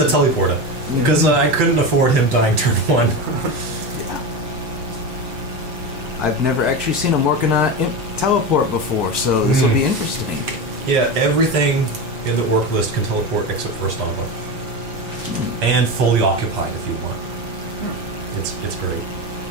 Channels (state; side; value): late; left; 6.0 ms